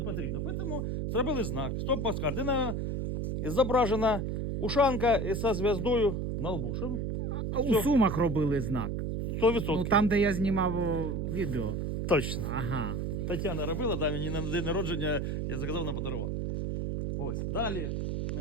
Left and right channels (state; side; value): noise; right; hum, 2 dB below the sound